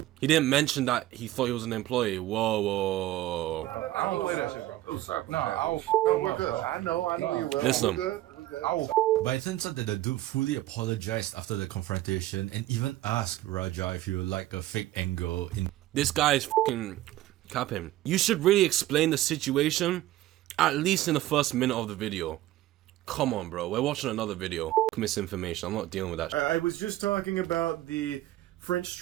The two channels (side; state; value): left; quieter; 15.4 dB